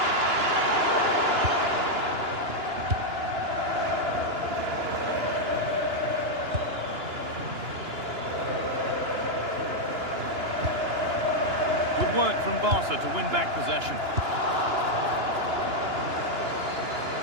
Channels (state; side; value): late; left; 2.9 ms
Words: Good work from Barca to win back possession.